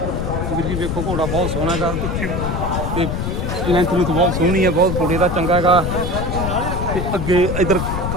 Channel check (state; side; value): noise; left; rumble, 2 dB below the sound